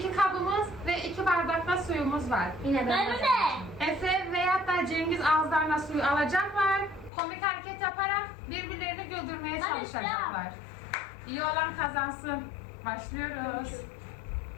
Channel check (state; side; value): drops out; right; at 7.1 s